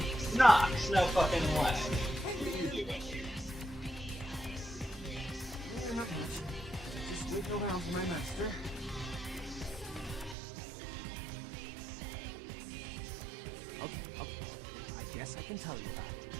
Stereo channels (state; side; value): drops out; left; at 10.4 s